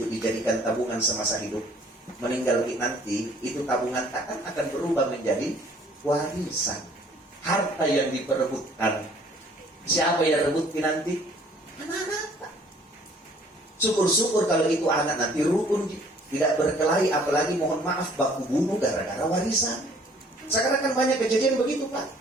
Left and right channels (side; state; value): both; normal; correlation 0.57